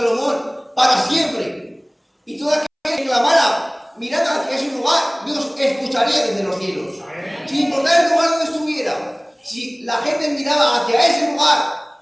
para siempre. Y toda aquella que clamara mirando hacia ese lugar, Dios escucharía desde los cielos. Sin importar el lugar donde estuviera, si la gente miraba hacia ese lugar,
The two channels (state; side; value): identical; both; correlation 1.00